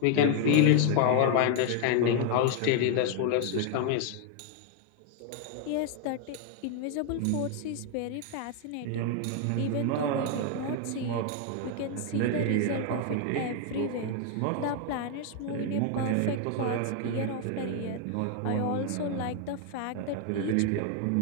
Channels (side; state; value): both; different; correlation 0.01